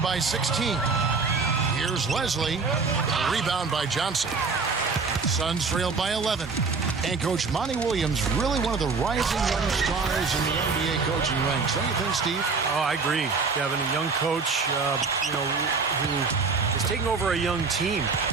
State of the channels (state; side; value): quieter; left; 4.6 dB